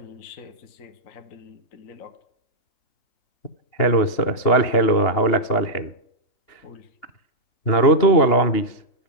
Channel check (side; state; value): right; late; 2.9 ms